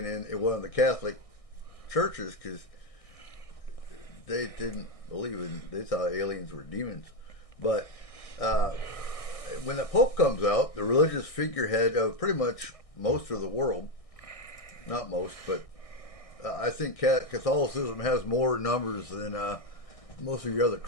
and in one of the Catholic churches because they didn't believe in. They thought aliens were demons. But when the Pope comes out, the religious figurehead of pretty much most of the world, not most, but I think Catholicism has more numbers than most of your other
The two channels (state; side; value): late; right; 1.6 ms